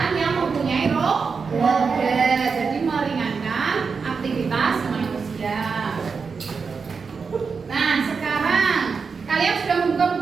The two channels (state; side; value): quieter; left; 5.3 dB